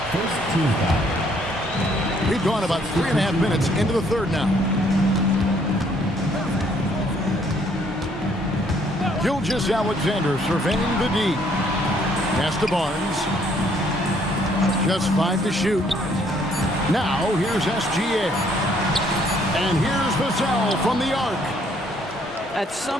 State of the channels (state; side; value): normal; both; correlation 0.65